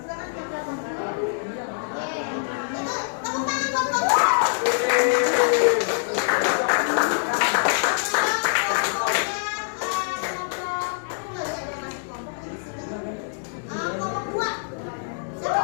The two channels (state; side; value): silent; right; digital silence